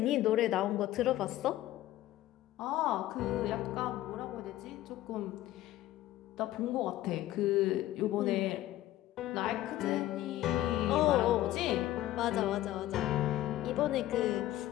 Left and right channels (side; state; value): right; quieter; 14.6 dB